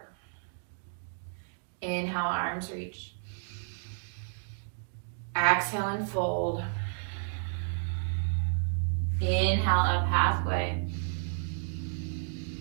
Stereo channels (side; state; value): left; silent; digital silence